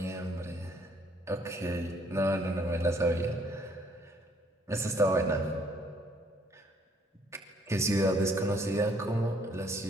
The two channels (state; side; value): normal; both; correlation 0.64